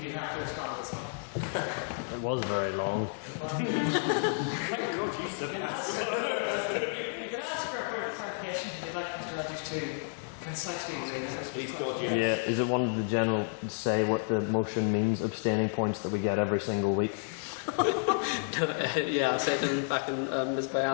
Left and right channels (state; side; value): silent; right; digital silence